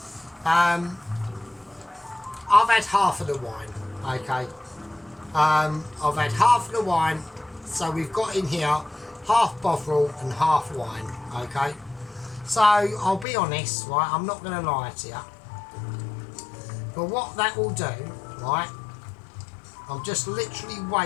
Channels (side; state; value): right; drops out; at 13.2 s